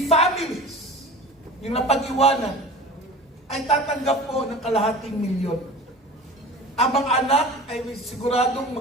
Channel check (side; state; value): both; normal; correlation 0.37